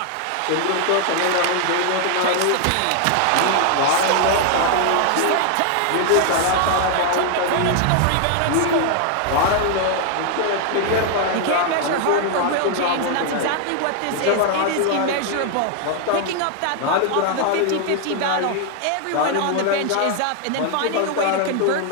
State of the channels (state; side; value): different; both; correlation 0.00